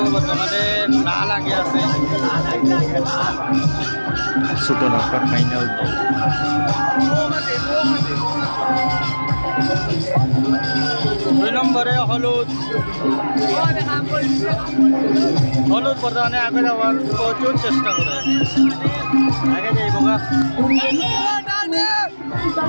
বর্তমানে না লাগে আছে ছোট নৌকার ফাইনাল। দুই নম্বরে হলুদ বর্তমানে আগে যাওয়ার প্রচুর চেষ্টা করে আগে যাই বোকা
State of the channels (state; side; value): inverted; both; correlation -1.00